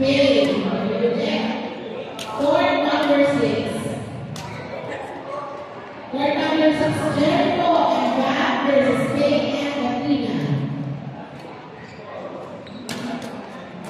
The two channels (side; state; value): both; identical; correlation 1.00